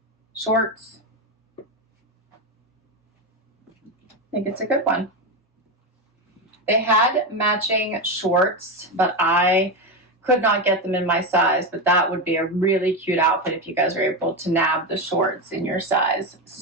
shorts. I think it's a good one. They had matching shorts, but I could not get them in my size, but that would be a really cute outfit if you guys are able to nab the shorts in your size.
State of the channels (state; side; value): normal; both; correlation 0.13